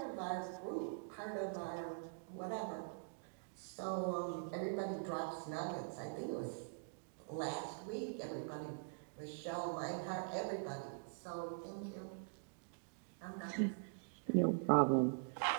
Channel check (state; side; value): silent; left; digital silence